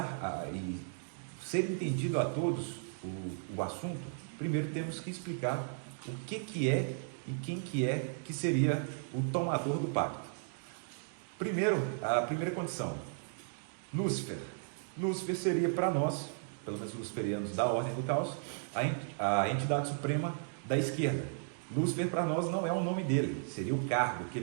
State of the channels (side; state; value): left; silent; digital silence